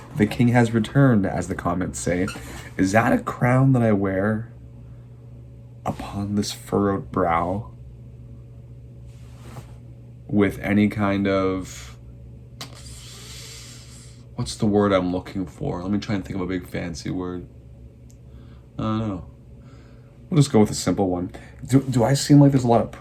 The king has returned, as the comments say. Is that a crown that I wear upon this furrowed brow with any kind of, what's the word I'm looking for? Let me try and think of a big fancy word. I don't know. We'll just go with a simple one. Do I seem like there's a lot of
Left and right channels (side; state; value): both; identical; correlation 1.00